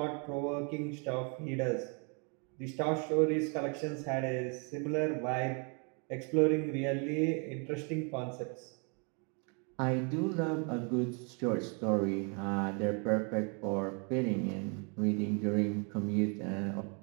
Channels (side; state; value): left; quieter; 35.9 dB